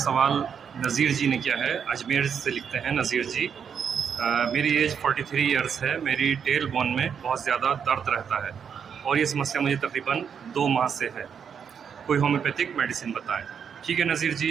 नज़ीर जी ने किया है। अजमेर से लिखते हैं नज़ीर जी। मेरी एज 43 इयर्स है। मेरी टेल बोन में बहुत ज़्यादा दर्द रहता है और ये समस्या मुझे तकरीबन 2 माह से है। कोई होम्योपैथिक मेडिसिन बताएं। ठीक है नज़ीर जी,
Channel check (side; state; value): left; quieter; 7.3 dB